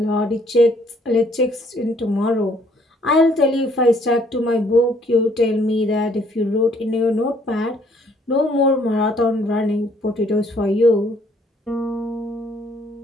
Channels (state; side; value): normal; both; correlation 0.64